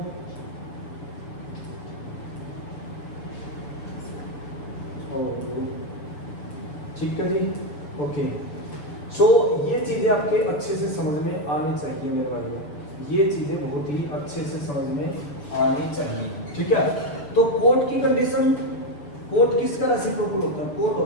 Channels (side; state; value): right; late; 6.9 ms